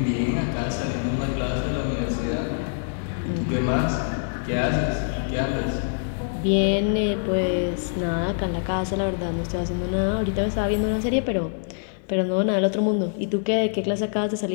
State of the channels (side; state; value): right; silent; digital silence